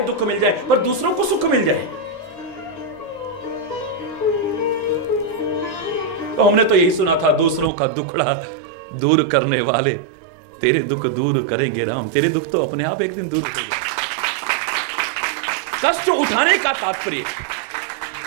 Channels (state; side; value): drops out; left; at 7.7 s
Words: दुख मिल जाए पर दूसरों को सुख मिल जाए। तो हमने तो यही सुना था, दूसरों का दुखड़ा दूर करने वाले तेरे दुख दूर करेंगे राम। तेरे दुख तो अपने आप एक दिन दूर करेंगे। कष्ट उठाने का तात्पर्य,